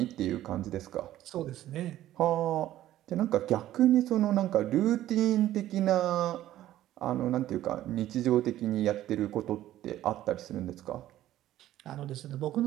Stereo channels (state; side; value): quieter; left; 13.6 dB